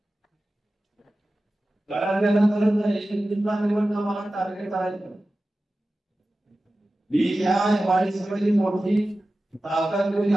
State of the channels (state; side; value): normal; both; correlation 0.95